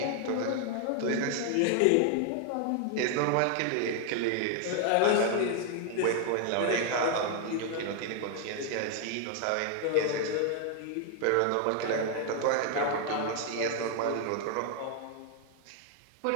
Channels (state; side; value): different; both; correlation 0.00